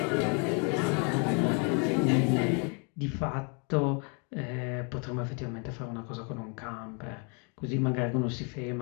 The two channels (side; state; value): right; quieter; 36.5 dB